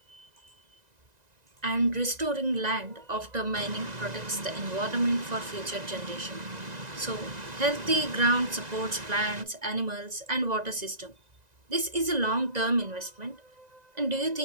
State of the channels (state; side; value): late; left; 1.9 ms